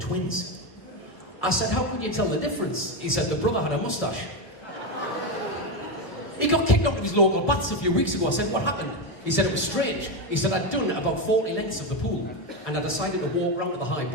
I said, how could you tell the difference? He said, the brother had a moustache. He got kicked out of his local baths a few weeks ago. I said, what happened? He said, it was strange. He said, I'd done about 40 lengths of the pool, and I decided to walk round to the high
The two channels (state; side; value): late; right; 1.2 ms